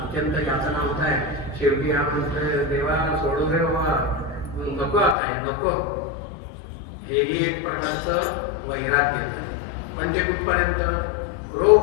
यातना होत आहे. शेवटी हा म्हणतोय देवा सोडू दे बाबा, नको आता हे नको. हेही एक प्रकारचं वैराग्य. पण ते कुठपर्यंत रोग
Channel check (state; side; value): drops out; right; at 5.2 s